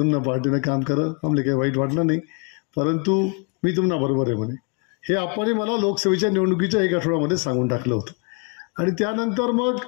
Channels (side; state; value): right; quieter; 34.8 dB